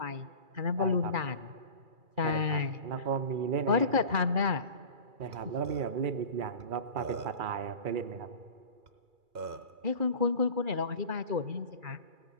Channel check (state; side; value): late; left; 2.3 ms